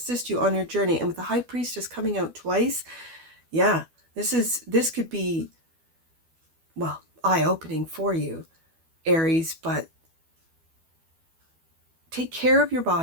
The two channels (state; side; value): late; left; 12 ms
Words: you on your journey. And with the High Priestess coming out twice, yeah, this could be, well, eye-opening for you, Aries, but take care of your